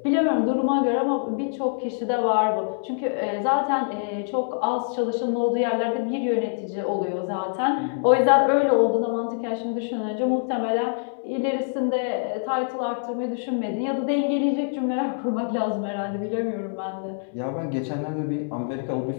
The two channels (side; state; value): right; silent; digital silence